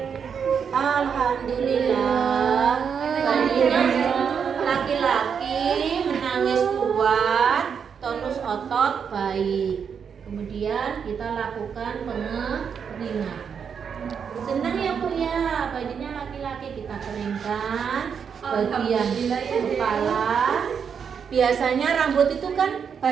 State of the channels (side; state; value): left; quieter; 6.9 dB